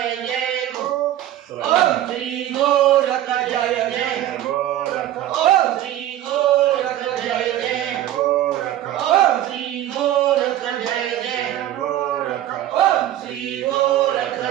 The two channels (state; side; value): quieter; left; 12.9 dB